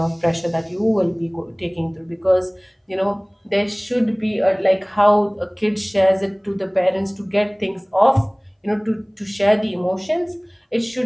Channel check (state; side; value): identical; both; correlation 1.00